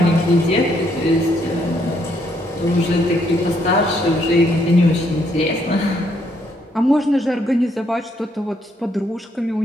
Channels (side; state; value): both; normal; correlation 0.72